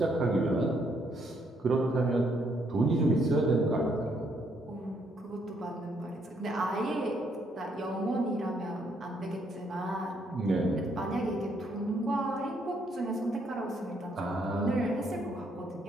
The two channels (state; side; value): normal; both; correlation 0.72